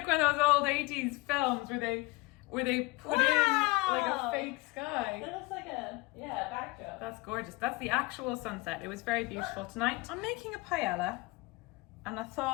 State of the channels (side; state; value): right; quieter; 23.1 dB